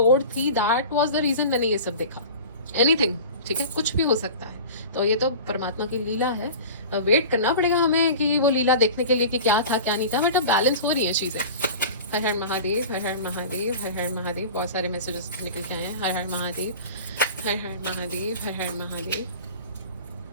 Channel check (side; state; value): both; inverted; correlation -0.36